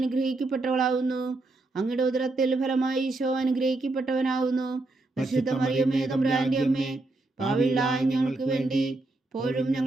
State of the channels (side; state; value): left; quieter; 3.1 dB